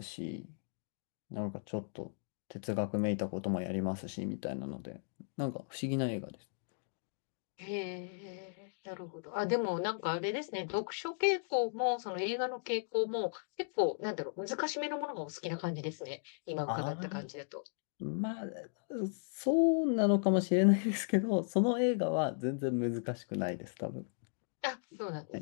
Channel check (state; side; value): silent; right; digital silence